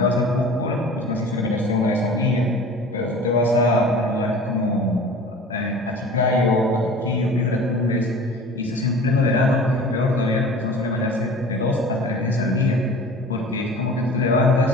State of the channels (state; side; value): normal; both; correlation 0.41